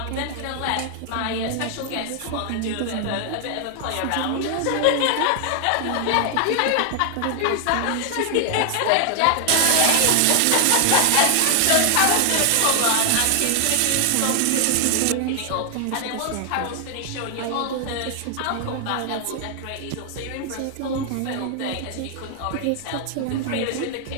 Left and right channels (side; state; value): both; different; correlation 0.00